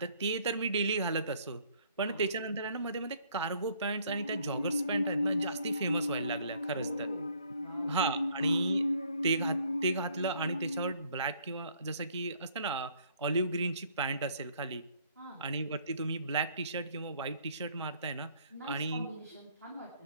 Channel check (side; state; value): both; inverted; correlation -0.63